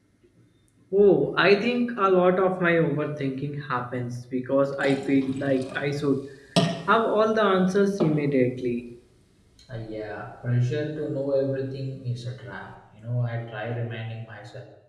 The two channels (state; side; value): identical; both; correlation 1.00